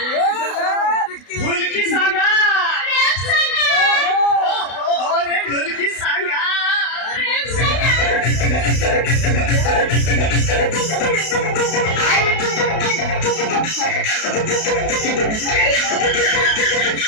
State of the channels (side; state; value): right; late; 32 ms